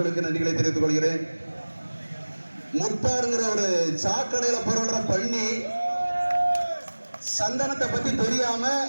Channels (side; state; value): both; inverted; correlation -1.00